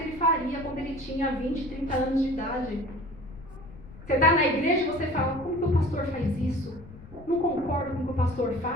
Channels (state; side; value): noise; left; rumble, 18 dB below the sound